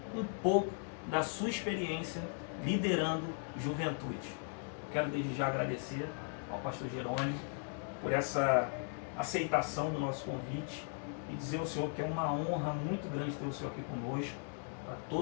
um pouco da sua experiência liderando juventude. Quero desde já agradecer ao Pastor Jerônimo por essa aceitação do nosso convite e dizer ao Senhor que é uma honra muito grande ter o Senhor aqui conosco, para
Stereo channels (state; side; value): silent; right; 53 dB below the other